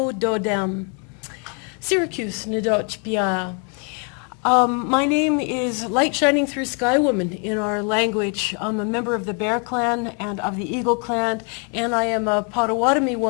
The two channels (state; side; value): quieter; right; 38.0 dB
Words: dodem. Syracuse Nadoch Pia. My name is Light Shining Through Sky Woman in our language. I'm a member of the Bear Clan and of the Eagle Clan, and I am a Potawatomi